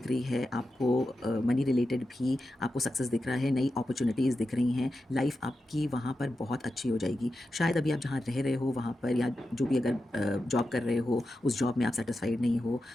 रही है आपको। मनी रिलेटेड भी आपको सक्सेस दिख रहा है, नई अपॉर्चुनिटीज़ दिख रही हैं। लाइफ आपकी वहाँ पर बहुत अच्छी हो जाएगी। शायद अभी आप जहाँ रह रहे हो वहाँ पर, या जो भी अगर जॉब कर रहे हो उस जॉब में आप सेटिस्फाइड नहीं हो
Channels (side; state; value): both; normal; correlation 0.90